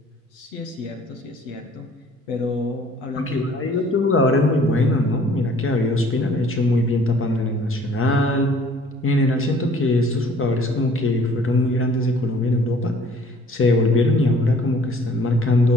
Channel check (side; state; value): both; normal; correlation 0.54